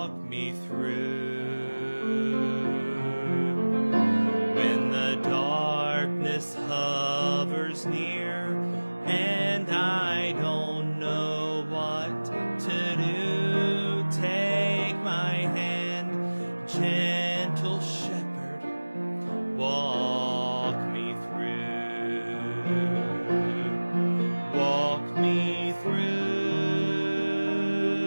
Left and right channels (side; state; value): both; inverted; correlation -1.00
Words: me through. When the darkness hovers near and I don't know what to do, take my hand, gentle shepherd, walk me through. Walk me through.